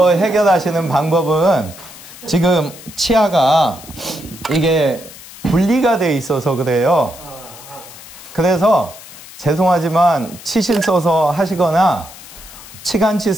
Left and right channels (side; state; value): left; noise; hiss, 17 dB below the sound